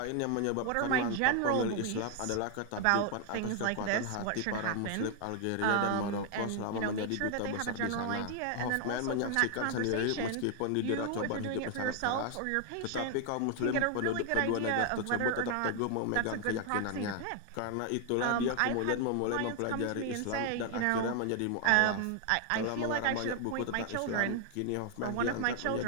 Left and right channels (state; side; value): different; both; correlation 0.00